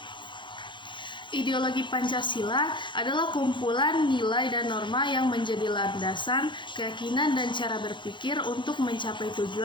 Ideologi Pancasila adalah kumpulan nilai dan norma yang menjadi landasan, keyakinan, dan cara berpikir untuk mencapai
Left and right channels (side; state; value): right; late; 0.23 ms